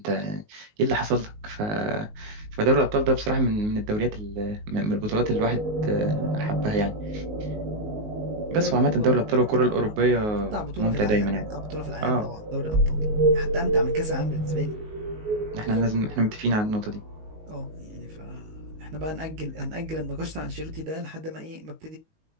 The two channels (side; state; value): left; late; 19 ms